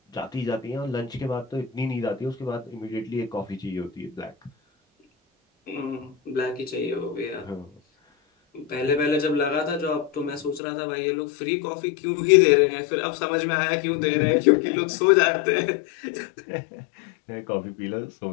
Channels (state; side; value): drops out; right; at 10.6 s